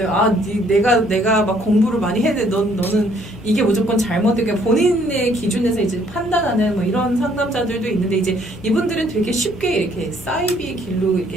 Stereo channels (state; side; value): normal; both; correlation 0.64